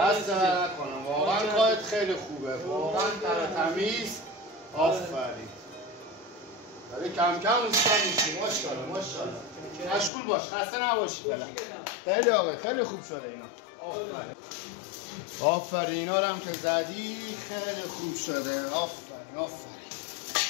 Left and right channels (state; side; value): drops out; right; at 10.1 s